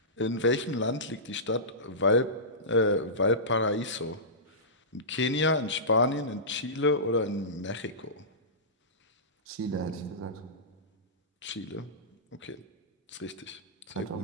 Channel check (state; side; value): normal; both; correlation -0.19